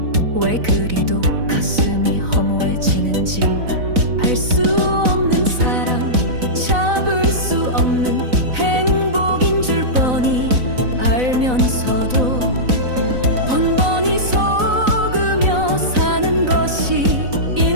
왜 그리도 가슴이 허무해지는지. 알 수 없는 사랑, 잡을 수 없는 행복인 줄 뻔히 알면서도 번번이 속으며 사는 것이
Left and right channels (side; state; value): left; late; 4.0 ms